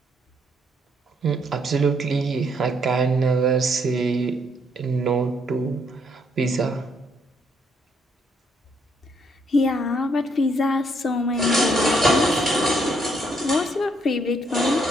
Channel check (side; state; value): both; normal; correlation 0.71